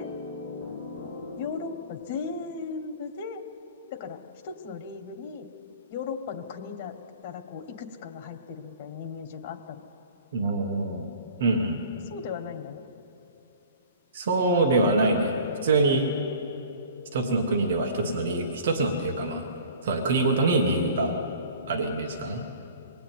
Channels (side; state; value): both; inverted; correlation -0.45